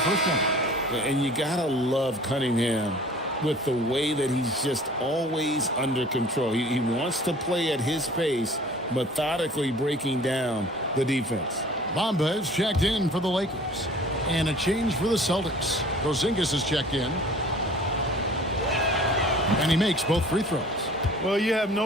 first one. And you gotta love Cunningham with the way that he's just always under control. He wants to play at his pace, methodically breaking down the defense. Bamba is checked in for the Lakers. And a change for the Celtics. Porzingis is checked in. And he makes both free throws. Well, you have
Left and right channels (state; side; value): normal; both; correlation 0.48